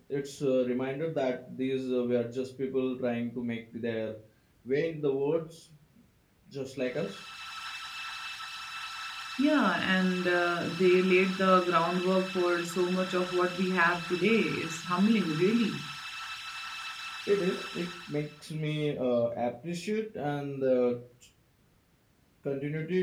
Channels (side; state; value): both; identical; correlation 1.00